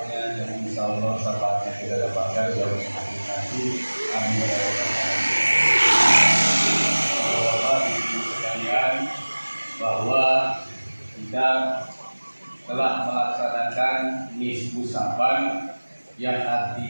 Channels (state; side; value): inverted; both; correlation -1.00